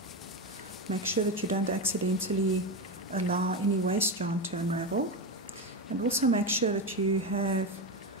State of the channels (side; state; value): both; normal; correlation 0.15